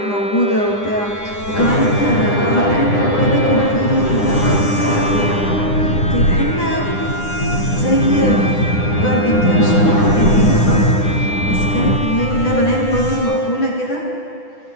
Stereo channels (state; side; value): late; right; 9.9 ms